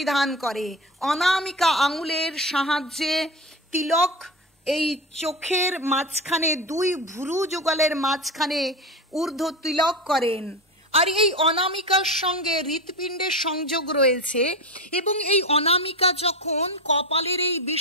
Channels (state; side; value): normal; both; correlation 0.23